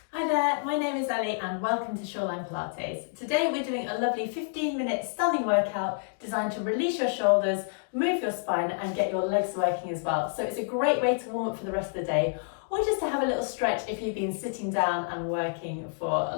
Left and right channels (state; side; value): silent; right; digital silence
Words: there, my name is Ellie and welcome to Shoreline Pilates. Today we're doing a lovely 15-minute standing workout designed to release your shoulders, move your spine and get your legs working as well. So it's a great way to warm up for the rest of the day or just to have a little stretch if you've been sitting down and working for a